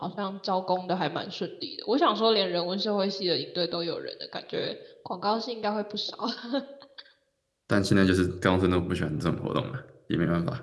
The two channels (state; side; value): identical; both; correlation 1.00